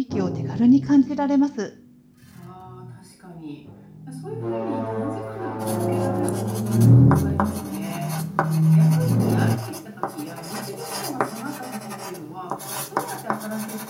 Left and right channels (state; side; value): identical; both; correlation 1.00